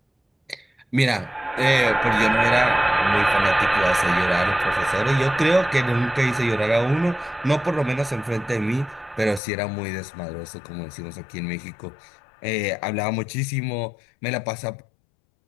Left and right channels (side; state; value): right; drops out; at 9.4 s